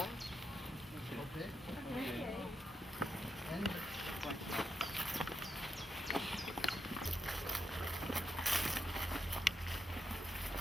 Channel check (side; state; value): both; normal; correlation 0.84